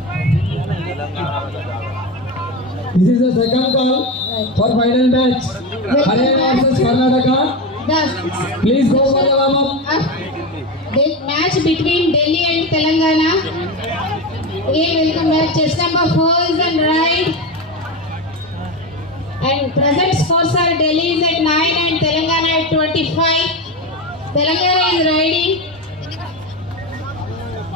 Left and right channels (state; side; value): normal; both; correlation 0.18